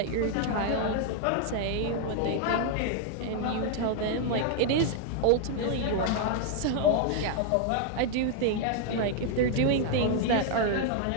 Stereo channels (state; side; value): different; both; correlation 0.00